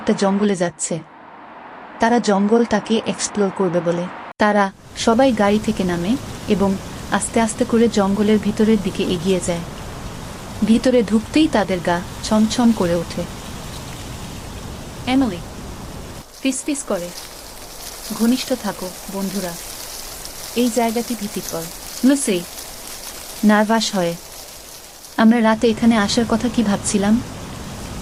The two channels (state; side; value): identical; both; correlation 1.00